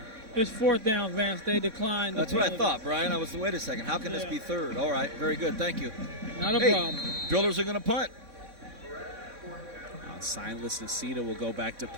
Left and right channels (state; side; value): late; left; 3.6 ms